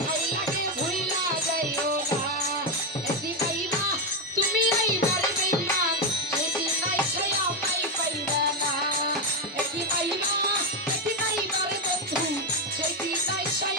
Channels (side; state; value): both; normal; correlation 0.07